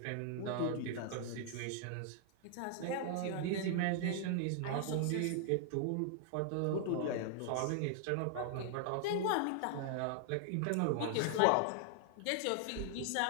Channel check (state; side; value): different; both; correlation 0.00